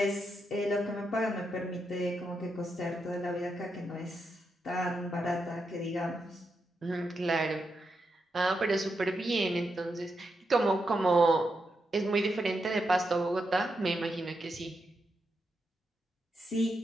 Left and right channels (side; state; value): both; normal; correlation 0.84